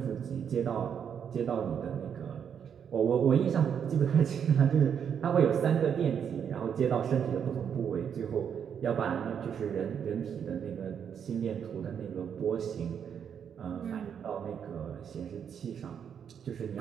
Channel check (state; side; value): quieter; left; 7.9 dB